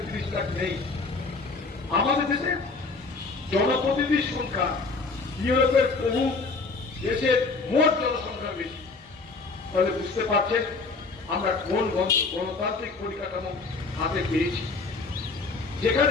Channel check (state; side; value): quieter; right; 4.0 dB